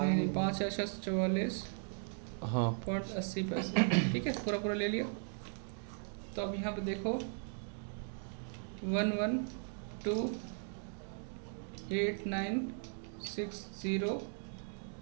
हाँ पॉइंट 80 पैसे। ठीक है, पूरा पूरा ले लिया। तो अब यहाँ पे देखो 112,8960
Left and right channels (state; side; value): silent; left; 53 dB below the other